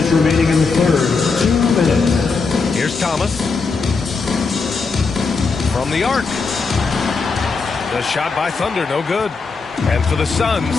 remaining in the third. 2 minutes. Here's Thomas. From the arc. The shot by Thunder, no good. And for the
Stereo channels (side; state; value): right; quieter; 4.5 dB